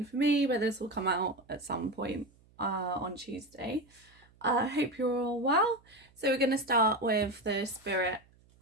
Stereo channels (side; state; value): right; noise; hum, 30 dB below the sound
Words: for me, but this will come out at some point on Tuesday. I hope you're all well. So we're going to start with the spirit